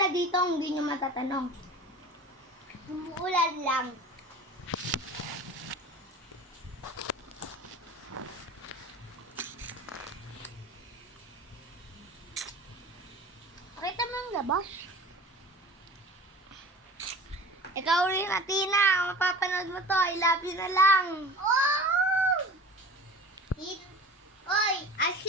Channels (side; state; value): both; normal; correlation 0.38